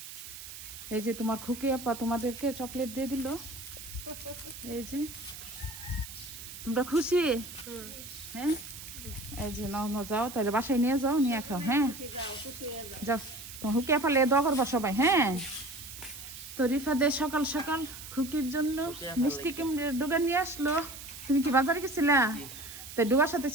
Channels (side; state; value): right; noise; hiss, 12 dB below the sound